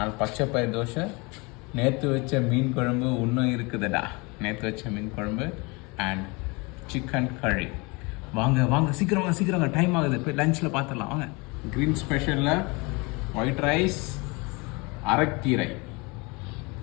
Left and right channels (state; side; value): quieter; right; 27.5 dB